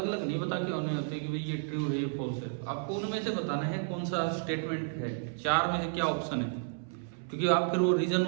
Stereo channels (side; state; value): left; silent; 57 dB below the other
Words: अलग नहीं बता के होने होते कि भाई ये ट्रू है ये फॉल्स है। आपको उनमें से बताना है कौन सा स्टेटमेंट है, 4 में से क्या ऑप्शन है, क्योंकि आप फिर वो रीजन